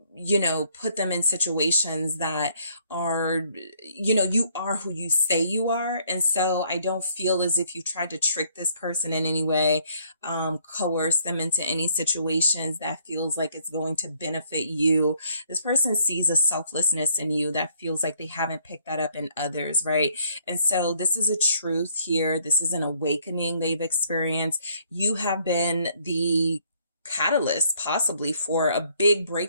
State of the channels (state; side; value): inverted; both; correlation -0.66